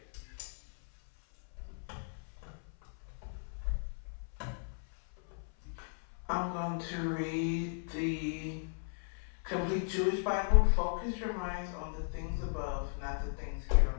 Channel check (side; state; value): right; silent; 54 dB below the other